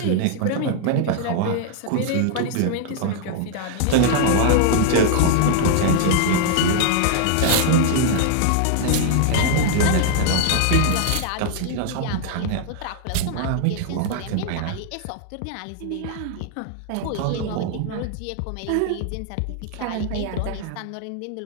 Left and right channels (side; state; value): both; different; correlation 0.00